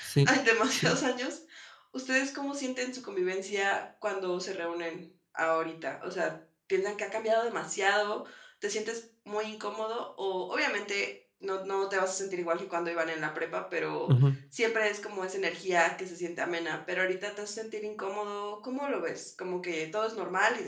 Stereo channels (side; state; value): both; identical; correlation 1.00